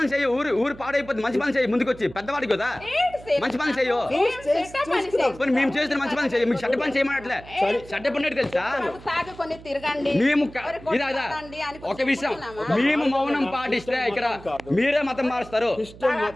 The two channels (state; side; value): noise; right; hum, 18 dB below the sound